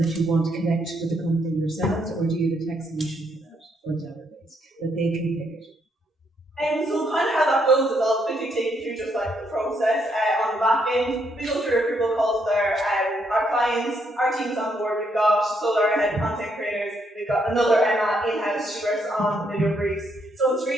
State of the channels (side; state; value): both; normal; correlation 0.74